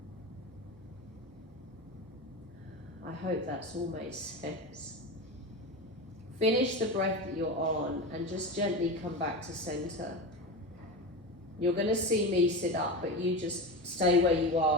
I hope that's all made sense. Finish the breath that you're on and just gently come back to center. You're going to see me sit up, but you just stay where you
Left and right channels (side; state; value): right; noise; hum, 26 dB below the sound